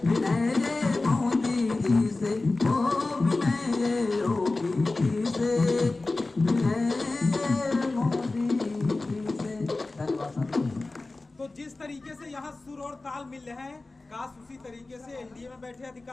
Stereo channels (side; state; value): right; quieter; 3.3 dB